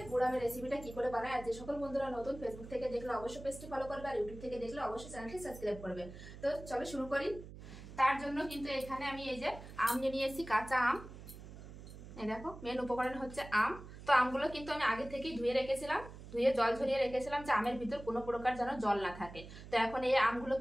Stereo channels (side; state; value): right; noise; hum, 14 dB below the sound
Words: গুড় আমের রেসিপিটা কি করে বানায়। আর যে সকল বন্ধুরা নতুন ফেসবুক থেকে দেখলে অবশ্যই পেজটি ফলো করবে, আর ইউটিউব থেকে দেখলে অবশ্যই চ্যানেলটি সাবস্ক্রাইব করবে। তো চলো শুরু করি। তার জন্য কিন্তু এখানে আমি এই যে আম নিয়ে নিয়েছি, কাঁচা আম। এই দেখো, মেন উপকরণ হচ্ছে আম। তো আমগুলো কিন্তু আমি আগে থেকেই ধুয়ে রেখেছিলাম, ধুয়ে জল ঝরিয়ে রেখেছিলাম যে আমের ভিতর কোনো প্রকার যেন জল না থাকে। তো এখন এই আমগুলো